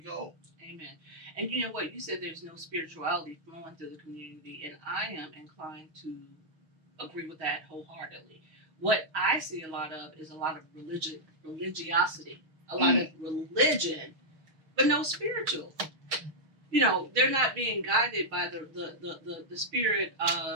go. Amen. And you know what? You said there's no spirituality flowing through the community, and I am inclined to agree with that wholeheartedly. What I see a lot of is a lot of religiosity, a lot of religion, but no spiritual. They're not being guided by the spirit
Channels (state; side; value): late; left; 6.4 ms